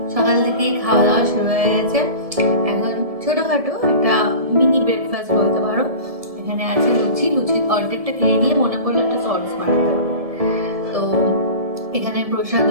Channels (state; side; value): late; left; 1.7 ms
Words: সকাল থেকেই খাওয়া দাওয়া শুরু হয়ে গেছে। এখন ছোটখাটো একটা মিনি ব্রেকফাস্ট বলতে পারো। এখানে আছে লুচি, লুচির অর্ধেকটা খেয়ে নিয়ে মনে পড়লো একটা সস বানাতে হবে। তো এখানে প্রসাদ